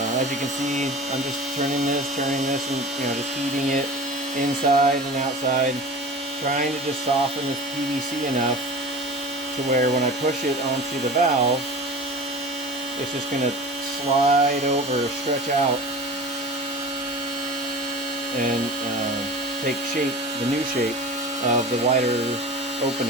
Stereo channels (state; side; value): normal; both; correlation 0.36